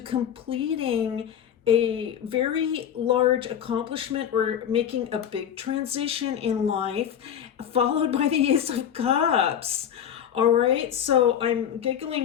a very large accomplishment or making a big transition in life, followed by the Ace of Cups. All right, so I'm giggling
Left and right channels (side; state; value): right; quieter; 9.2 dB